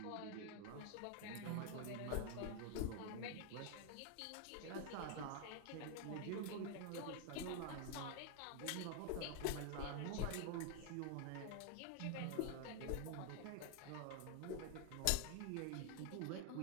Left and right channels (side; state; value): both; different; correlation 0.00